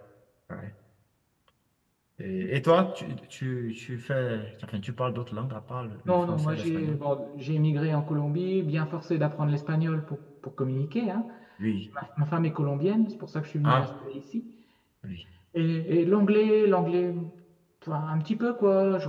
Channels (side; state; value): both; identical; correlation 1.00